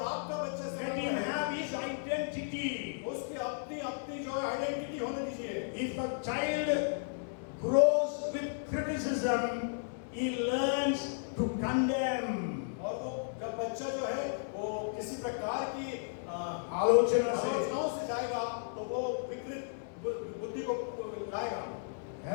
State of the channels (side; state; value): right; silent; digital silence